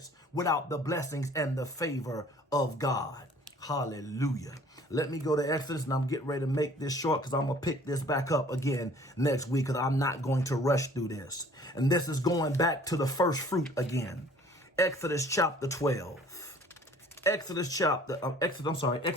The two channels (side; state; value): both; normal; correlation 0.53